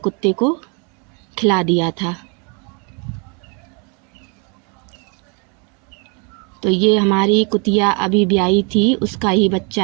को खिला दिया था। तो ये हमारी कुतिया अभी ब्याई थी, उसका ही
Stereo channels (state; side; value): quieter; left; 34.8 dB